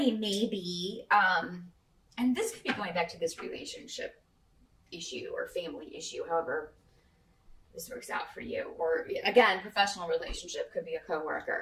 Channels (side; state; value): both; identical; correlation 1.00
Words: may be, and this could be going back to this relationship issue or family issue, however this works out for you. Or again, professional relationship, could be a